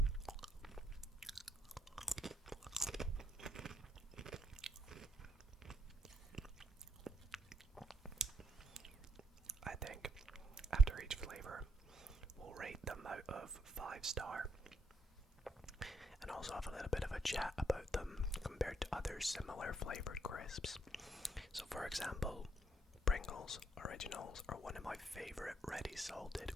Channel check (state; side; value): normal; both; correlation 0.71